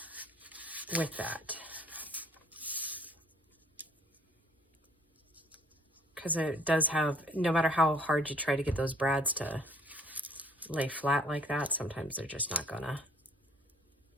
with that. Because it does have, no matter how hard you try to get those brads to lay flat like that, sometimes they're just not gonna.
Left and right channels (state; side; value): normal; both; correlation 0.57